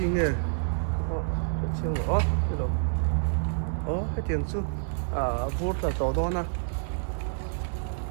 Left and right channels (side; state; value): left; silent; digital silence